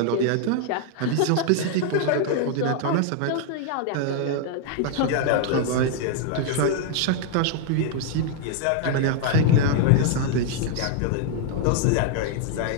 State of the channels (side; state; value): both; different; correlation 0.00